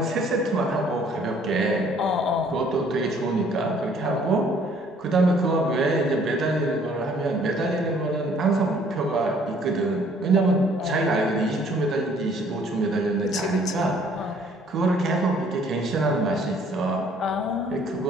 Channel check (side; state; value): both; normal; correlation 0.60